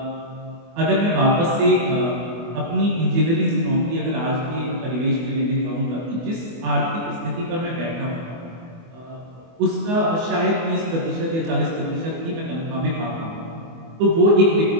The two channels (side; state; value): left; late; 24 ms